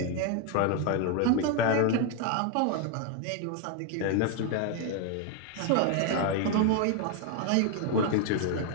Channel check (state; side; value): different; both; correlation 0.01